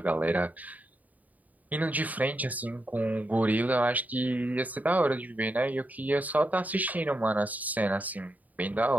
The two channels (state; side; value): late; left; 0.076 ms